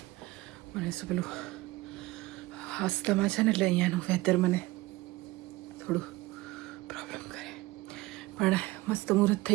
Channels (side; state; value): left; quieter; 19.8 dB